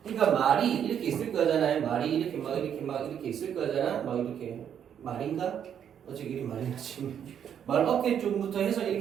그러니까 말이 이렇게 있을 거잖아요. 말이 이렇게 막 이렇게 있을 거잖아. 막 이렇게 말인가? 어째 이리 많이 나지? 말 어깨 쪽부터 해서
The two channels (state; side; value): quieter; left; 8.8 dB